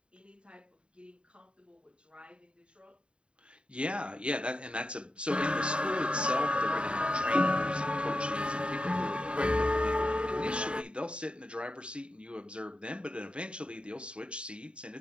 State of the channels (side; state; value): left; late; 0.055 ms